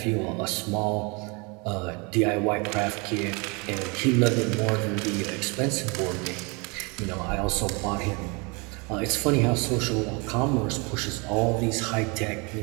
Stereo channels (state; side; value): quieter; left; 30.1 dB